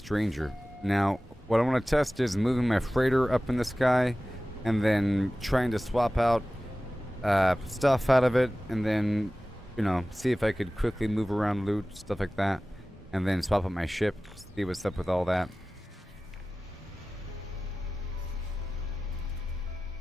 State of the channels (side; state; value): both; normal; correlation 0.96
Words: Now, what I want to test is moving my freighter up in the sky and then trying to swap out stuff out of it and then, you know, see if I could quickly move around loot, stuff like that. And then swap out my ship, see what's up with all that.